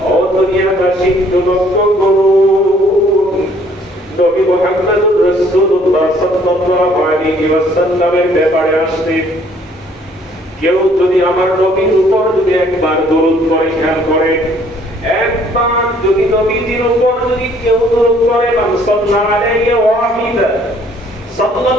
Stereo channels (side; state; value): both; normal; correlation 0.61